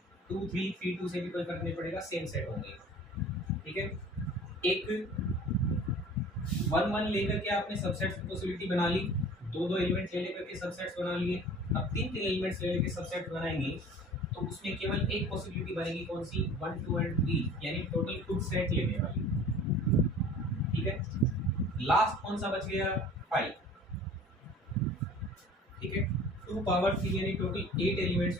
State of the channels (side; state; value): both; normal; correlation 0.45